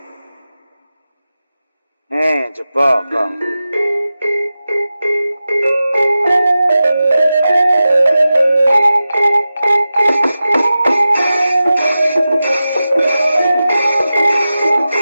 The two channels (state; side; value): inverted; both; correlation -0.94